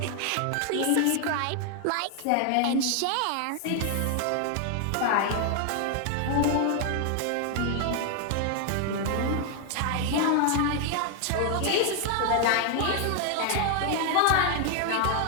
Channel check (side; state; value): both; different; correlation 0.00